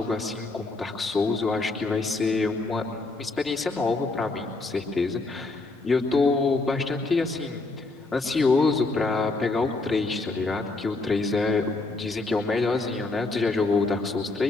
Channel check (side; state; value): right; quieter; 3.4 dB